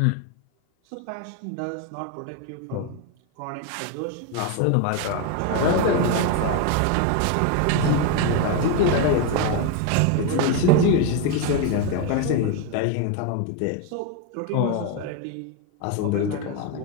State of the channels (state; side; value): different; both; correlation 0.02